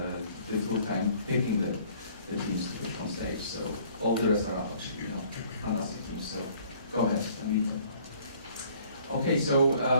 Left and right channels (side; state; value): both; inverted; correlation -0.57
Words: difficult time picking the teams to pitch on stage. So all the rest are actually fantastic teams. So go ahead and meet them. Okay, so